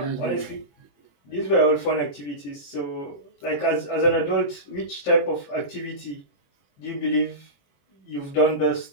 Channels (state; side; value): late; right; 21 ms